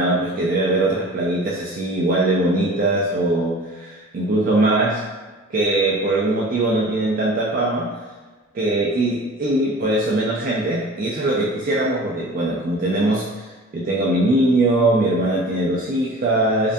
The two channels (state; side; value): normal; both; correlation 0.41